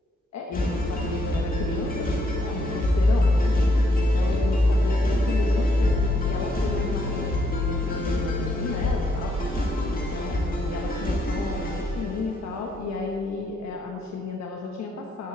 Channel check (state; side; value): normal; both; correlation 0.74